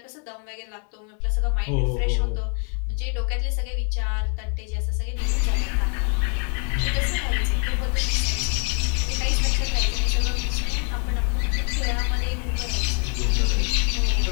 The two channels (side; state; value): right; quieter; 38.6 dB